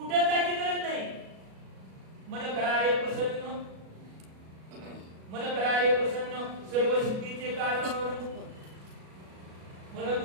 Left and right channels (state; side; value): late; left; 37 ms